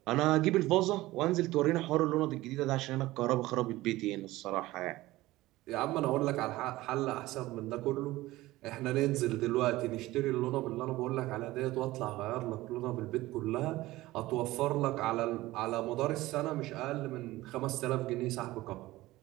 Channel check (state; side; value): quieter; left; 17.9 dB